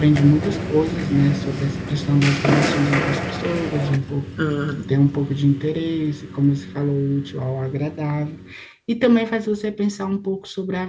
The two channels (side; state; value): both; identical; correlation 1.00